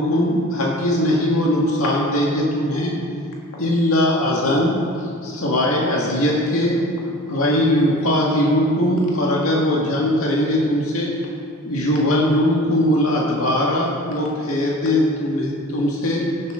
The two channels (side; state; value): both; normal; correlation 0.41